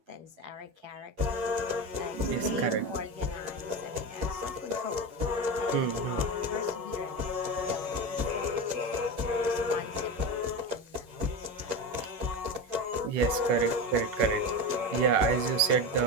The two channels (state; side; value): late; left; 11 ms